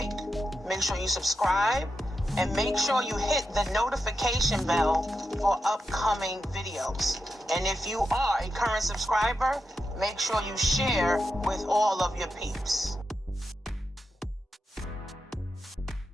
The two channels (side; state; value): both; normal; correlation 0.88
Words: make sure you subscribe, and make sure you hit the notification bell for upcoming videos. And if you are a current subscriber, make sure you share with all of your peeps.